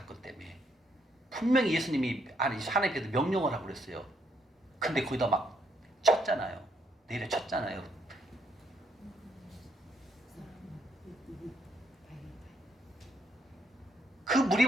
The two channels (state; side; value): normal; both; correlation 0.74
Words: 때문에. 분명히 예수님이 하나님께서 명령을 하고 그랬어요. 근데 거기다 막 쳤잖아요. 내려 쳤잖아요. 그